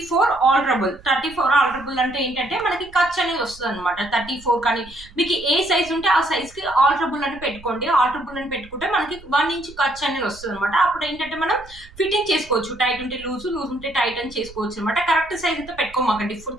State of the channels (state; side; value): noise; right; rumble, 21 dB below the sound